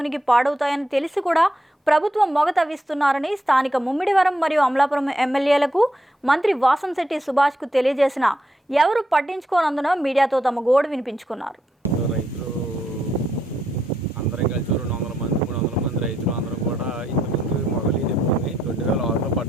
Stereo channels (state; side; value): normal; both; correlation 0.79